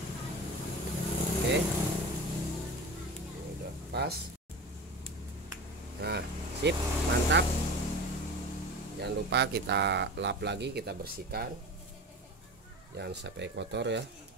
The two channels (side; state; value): both; normal; correlation 0.32